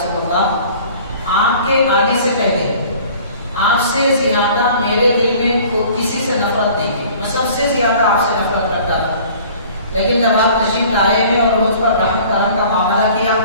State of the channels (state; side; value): inverted; both; correlation -0.49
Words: اللہ، آپ کے آنے سے پہلے آپ سے زیادہ میرے دل میں کسی سے نفرت نہیں ہے، میں سب سے زیادہ آپ سے نفرت کرتا تھا، لیکن جب آپ تشریف لائے ہیں اور مجھ پر رحم کرم کا معاملہ کیا